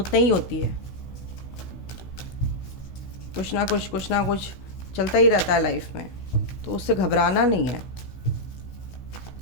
नहीं होती है, कुछ ना कुछ चलता ही रहता है लाइफ में, तो उससे घबराना नहीं है।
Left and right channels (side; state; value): right; late; 16 ms